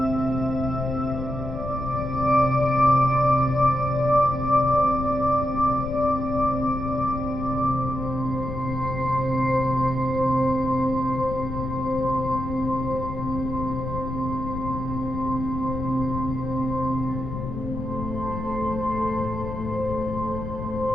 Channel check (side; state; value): left; noise; rumble, 7 dB below the sound